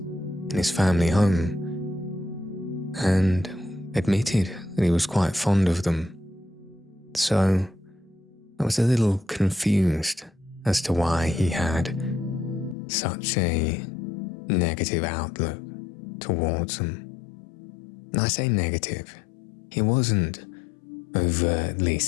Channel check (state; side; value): drops out; right; at 12.8 s